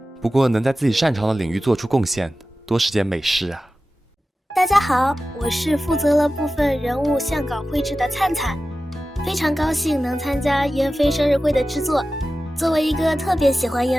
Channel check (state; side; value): normal; both; correlation 0.94